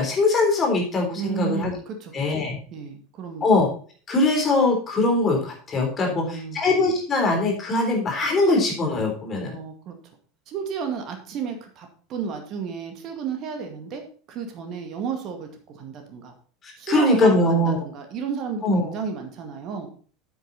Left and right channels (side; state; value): both; normal; correlation 0.31